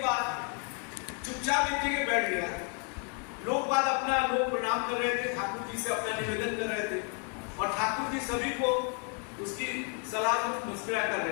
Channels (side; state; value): right; quieter; 39.5 dB